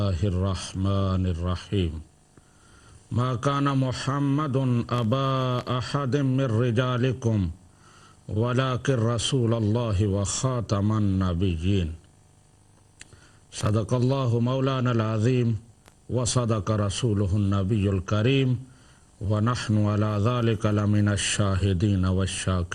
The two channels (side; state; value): both; identical; correlation 1.00